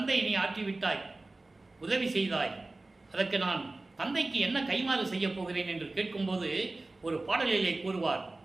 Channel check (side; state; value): left; quieter; 3.1 dB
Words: நீ ஆற்றிவிட்டாய், உதவி செய்தாய், அதற்கு நான் தந்தைக்கு என்ன கைமாறு செய்ய போகிறேன் என்று கேட்கும்போது ஒரு பாடலிலே கூறுவார்,